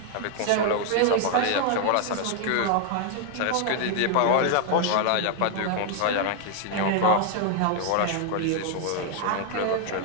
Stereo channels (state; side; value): different; both; correlation 0.00